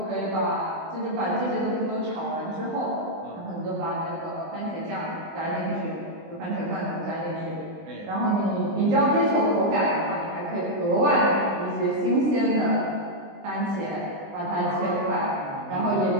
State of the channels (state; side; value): late; left; 20 ms